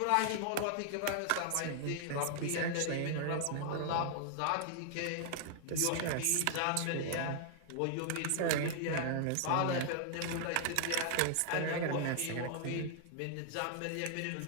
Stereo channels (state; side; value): different; both; correlation 0.00